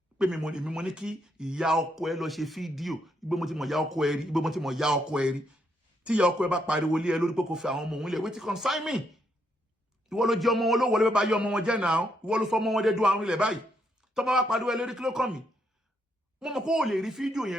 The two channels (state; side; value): normal; both; correlation 0.76